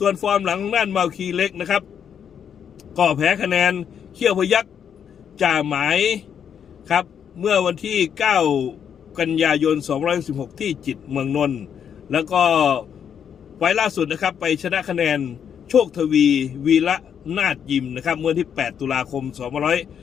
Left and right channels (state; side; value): quieter; right; 8.1 dB